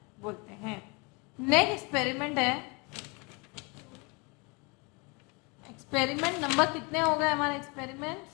बोलते हैं। Next experiment है, experiment number कितने हो गए हमारे, एक्सपेरिमेंट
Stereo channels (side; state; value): right; quieter; 29.9 dB